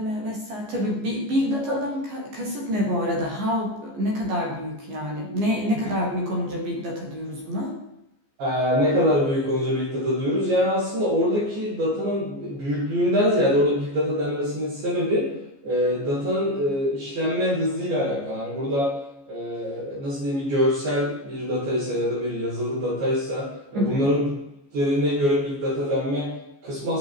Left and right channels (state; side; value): late; left; 14 ms